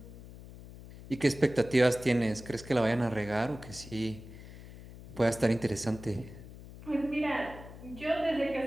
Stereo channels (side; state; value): left; noise; hum, 16 dB below the sound